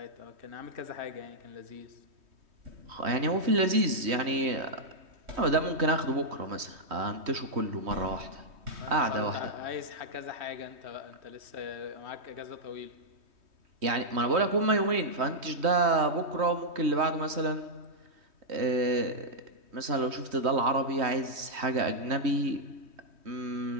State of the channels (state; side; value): late; left; 3.2 ms